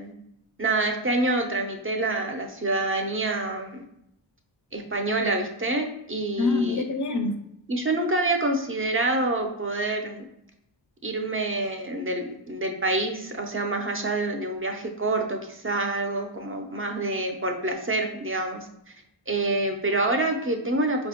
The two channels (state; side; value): normal; both; correlation 0.00